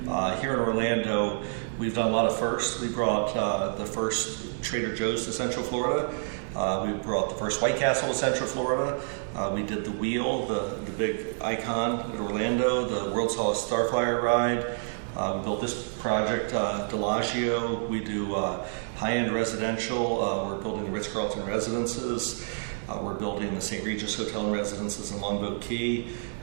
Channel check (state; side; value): silent; left; digital silence